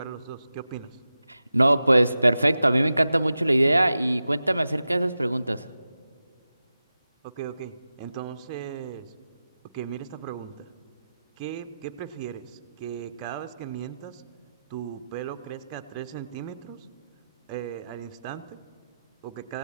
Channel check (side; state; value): both; inverted; correlation -0.93